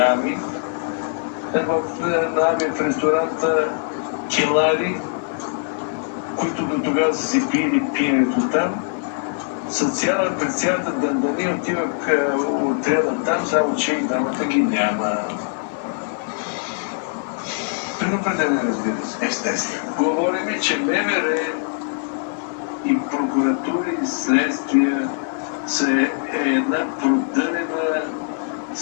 в ресторанта Келари, които до тогава са си пили пиенето там. През цялата дандани отивах отряда там, само че и дамата ги няма. Предупредение, разбира се. Естествено. Говорим, че МВР и прокуратури и следствия са една продънена,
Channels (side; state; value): right; silent; 62 dB below the other